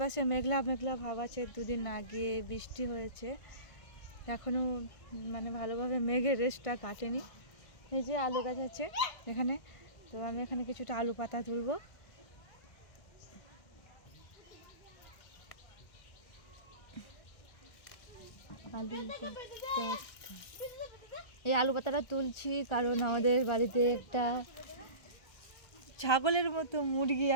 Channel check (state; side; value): late; right; 1.6 ms